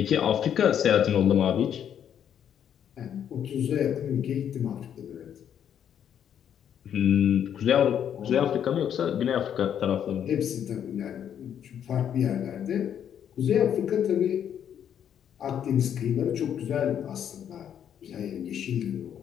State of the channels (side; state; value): right; quieter; 9.2 dB